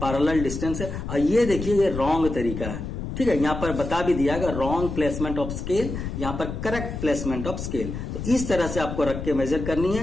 पैरेलल डिस्टेंस है, और ये देखिए ये रॉन्ग तरीका है, ठीक है। यहां पर बता भी दिया गया रॉन्ग प्लेसमेंट ऑफ स्केल, यहां पर करेक्ट प्लेसमेंट ऑफ स्केल। तो इस तरह से आपको रख के मेजर करनी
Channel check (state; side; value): noise; left; rumble, 6 dB below the sound